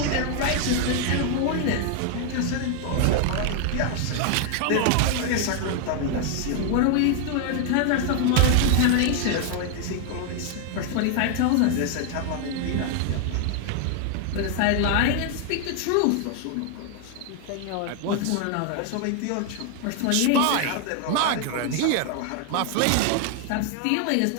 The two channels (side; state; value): both; different; correlation 0.00